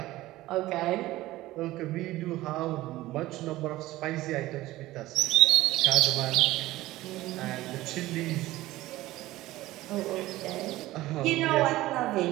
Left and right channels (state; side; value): quieter; left; 17.0 dB